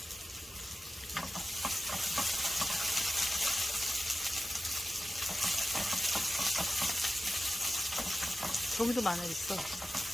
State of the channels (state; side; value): normal; both; correlation 0.93